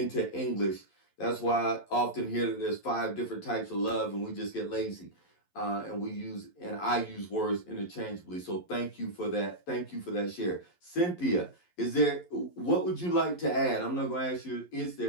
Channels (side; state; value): right; late; 11 ms